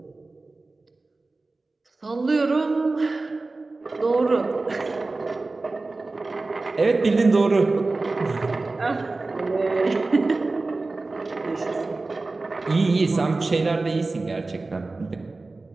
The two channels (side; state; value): left; quieter; 3.4 dB